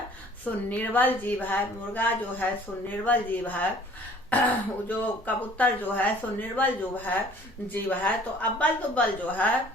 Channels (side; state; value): both; normal; correlation 0.53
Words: सो निर्बल जीव है, मुर्गा जो है सो निर्बल जीव है, जो कबूतर जो है सो निर्बल जो है जीव है, तो अब्बल दुब्बल जो है